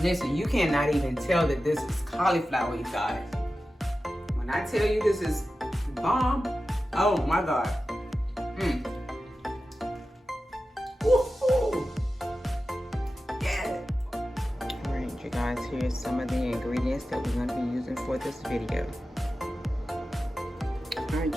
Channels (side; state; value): both; normal; correlation 0.93